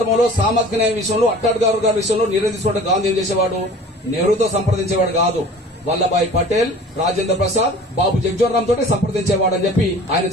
సామాజిక న్యాయ విషయంలో అట్టాడ్గారు గారి విషయంలో నిర్ణయం తీసుకోవడం గాంధీ ఏం చేసేవాడు? నెహ్రూతో సంప్రదించేవాడు కాదు, వల్లభాయ్ పటేల్, రాజేంద్ర ప్రసాద్, బాబు జగ్జీవన్ రామ్ తోటి సంప్రదించేవాడని చెప్పి ఆయన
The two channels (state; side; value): normal; both; correlation 0.44